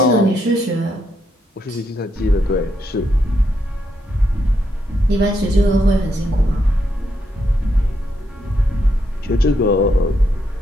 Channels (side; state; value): both; normal; correlation 0.79